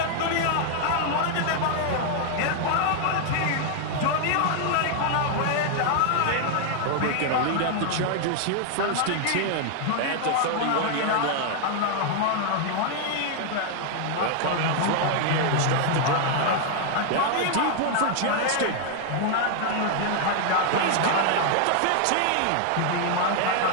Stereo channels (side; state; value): both; different; correlation 0.00